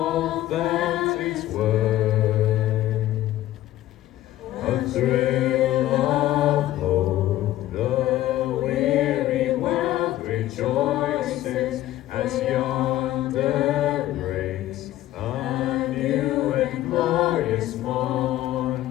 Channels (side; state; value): right; quieter; 14.5 dB